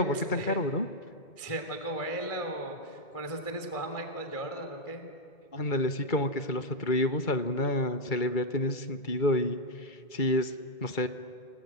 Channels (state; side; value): late; right; 2.3 ms